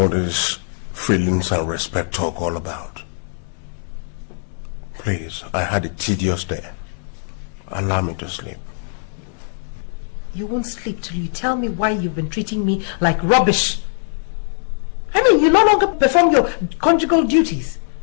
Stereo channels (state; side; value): silent; right; 65 dB below the other